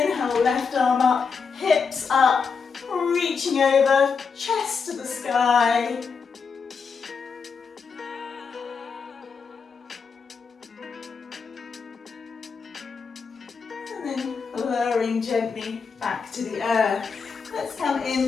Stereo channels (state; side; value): quieter; right; 5.5 dB